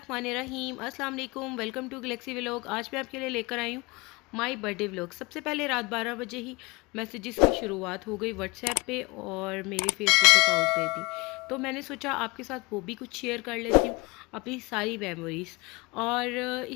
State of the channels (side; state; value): right; quieter; 24.8 dB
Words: अस्सलाम वालेकुम। Welcome to Galaxy vlog. आज मैं आपके लिए लेकर आई हूँ माई बर्थडे व्लॉग। सबसे पहले रात 12 बजे ही मैसेजेस की शुरुआत हो गई व्हाट्सएप पे और मेरे फेसबुक अकाउंट पे भी। तो मैंने सोचा आपके साथ वो भी कुछ शेयर कर लेती हूँ, अपनी सारी मेमोरीज़। और